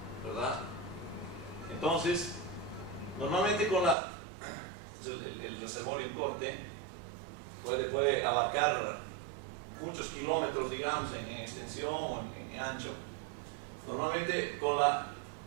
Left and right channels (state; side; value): drops out; left; at 4.0 s